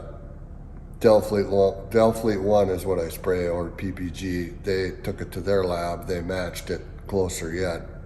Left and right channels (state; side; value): identical; both; correlation 1.00